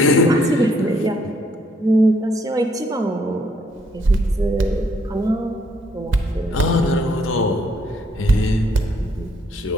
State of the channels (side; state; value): both; normal; correlation 0.69